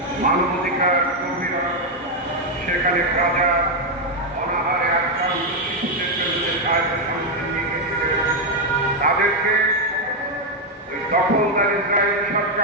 মানবাধিকার কর্মীরা সেখানে গাজা অনাহারে আক্রান্ত শিশুদের বিরুদ্ধে সাহায্য সামগ্রী নিয়ে গিয়েছিলেন। তাদেরকে দখলদার ইসরায়েল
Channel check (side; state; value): both; normal; correlation 0.03